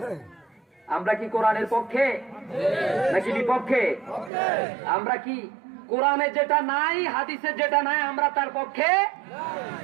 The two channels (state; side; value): drops out; left; at 4.3 s